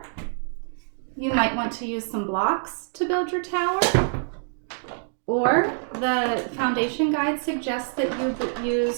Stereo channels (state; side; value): silent; left; digital silence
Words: You might want to use some blocks to build your tower. Or the foundation guide suggests that you